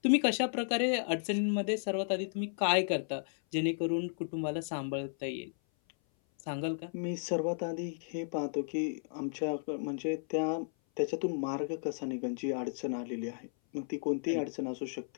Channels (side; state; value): right; silent; 55 dB below the other